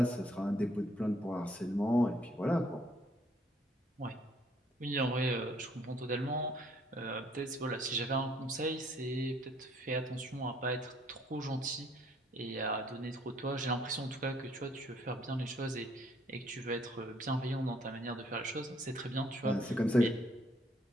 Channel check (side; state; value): both; normal; correlation 0.64